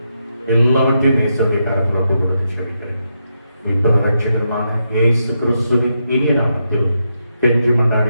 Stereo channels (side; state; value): both; inverted; correlation -0.83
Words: எல்லாவற்றையும் நேசருடைய கரத்தில் ஒப்புக் கொடுத்து செபிக்கிறேன். இப்போது ரட்சகருமான இயேசு கிறிஸ்துவின் இனிய நாமத்தில் கெஞ்சி